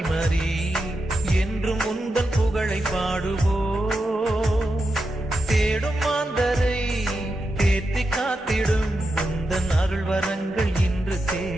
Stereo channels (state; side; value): normal; both; correlation 0.88